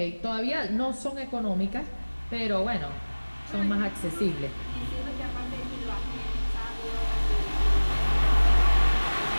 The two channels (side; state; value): both; inverted; correlation -1.00